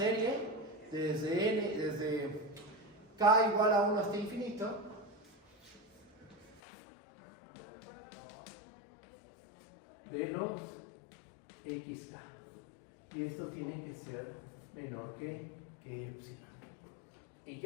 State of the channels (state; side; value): drops out; right; at 6.6 s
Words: desde k igual a 1 hasta infinito de los xk. Y esto tiene que ser menor que epsilon. ¿Y